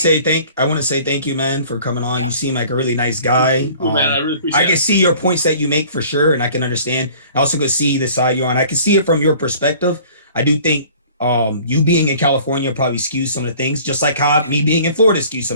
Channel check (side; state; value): both; inverted; correlation -0.49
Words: thank you, man, for coming on. Yeah. You seem like a really nice guy. Man, I really appreciate it. I can see your points that you make for sure, and I can understand. I also could see the side you're on. I can see it from your perspective. I do think you being in California probably skews some of the things, just like how me being in Florida skews